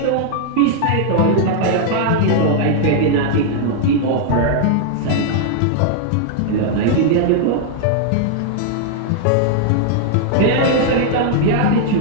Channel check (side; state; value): both; different; correlation 0.00